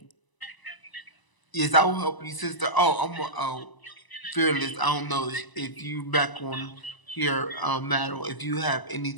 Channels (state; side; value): late; right; 1.0 ms